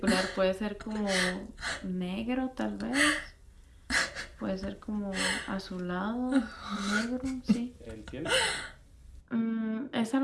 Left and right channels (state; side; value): identical; both; correlation 1.00